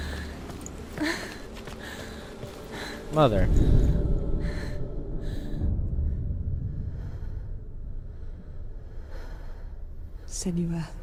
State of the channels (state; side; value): identical; both; correlation 1.00